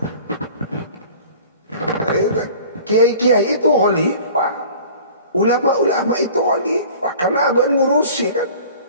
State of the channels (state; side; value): inverted; both; correlation -0.45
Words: Kiai-kiai itu khalifah, ulama-ulama itu khalifah karena abang ngurusi kan,